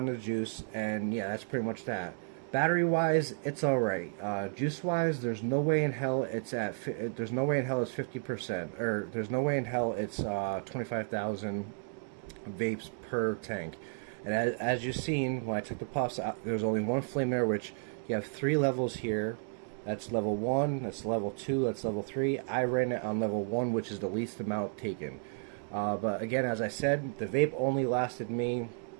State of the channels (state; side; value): silent; left; 56 dB below the other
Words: the juice, and yeah, that's pretty much that. Battery wise, it's alright. Juice wise, there's no way in hell it's there's no way in hell it's 50%, or there's no way in hell it's 25,000 vapes per tank. And as you've seen, when I took the puffs out, there's only one flame there, which you have 3 levels here. That's level 1, that's level 2, that's level 3. I ran it on level 1, which is the least amount taken. But again, as I said, the vape only lasted me